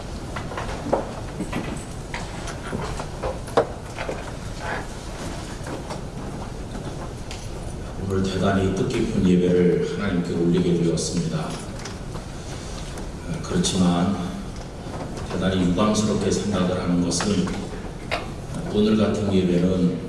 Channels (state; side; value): identical; both; correlation 1.00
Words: 오늘 대단히 뜻깊은 예배를 하나님께 올리게 되었습니다. 그렇지만 대단히 유감스럽게 생각을 하는 것은 오늘 같은 예배는